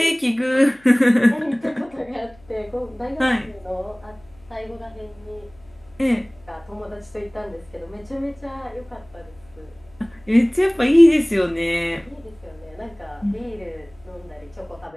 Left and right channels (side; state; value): left; noise; hum, 27 dB below the sound